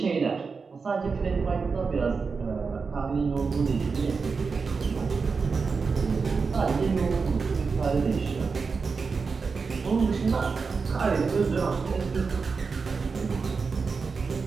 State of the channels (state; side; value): quieter; left; 4.9 dB